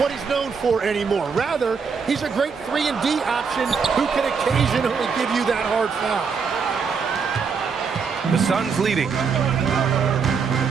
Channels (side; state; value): left; quieter; 5.7 dB